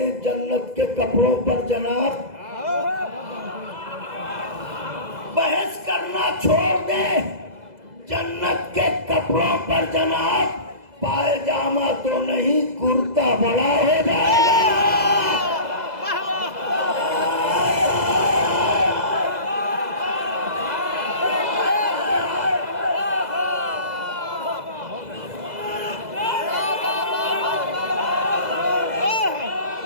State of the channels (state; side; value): late; left; 2.0 ms